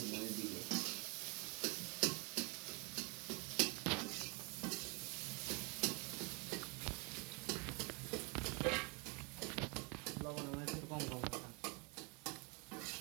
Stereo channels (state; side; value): quieter; left; 31.1 dB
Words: মনে দিবে লবণ আমার একটু কম কম রাখা